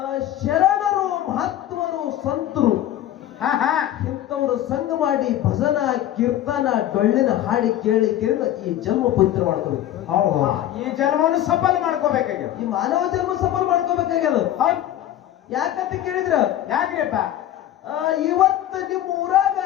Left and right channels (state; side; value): quieter; right; 12.5 dB